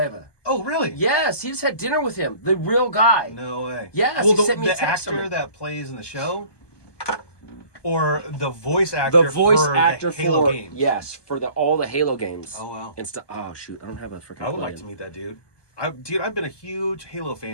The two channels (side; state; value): right; late; 1.2 ms